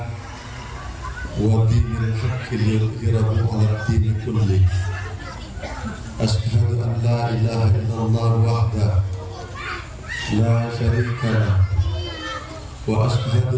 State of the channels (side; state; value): both; identical; correlation 1.00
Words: wa dinil haqqi liyudhhirahu 'alad dini kulli. Asyhadu an la ilaha illallah wahdahu la syarika lah wa